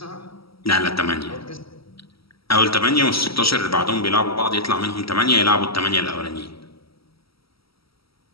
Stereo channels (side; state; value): right; late; 0.75 ms